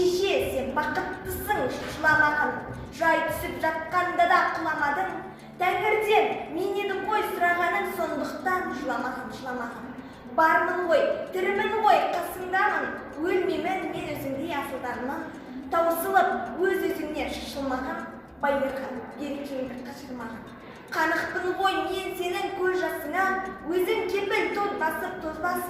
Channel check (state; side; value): identical; both; correlation 1.00